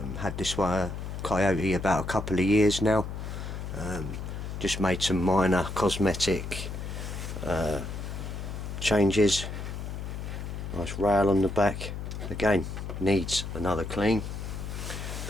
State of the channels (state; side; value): noise; left; hum, 6 dB below the sound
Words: Had this one Coyote about a couple of years now. Just made some minor cosmetic changes. Nice rail on the back. Again, needs another clean.